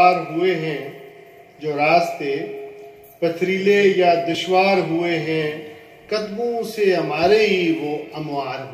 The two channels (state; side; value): identical; both; correlation 1.00